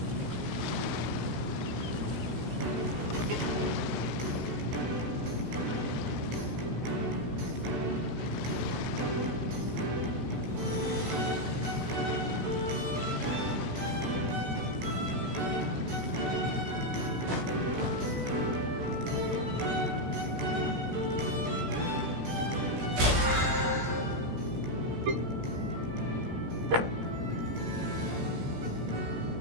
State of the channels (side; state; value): left; late; 16 ms